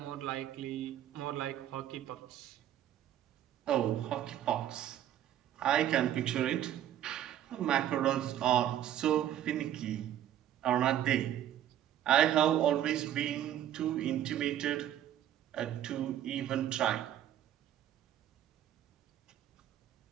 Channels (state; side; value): quieter; left; 11.4 dB